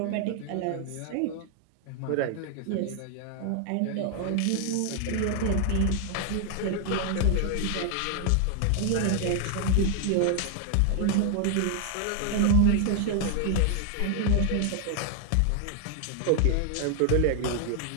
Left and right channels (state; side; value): different; both; correlation 0.00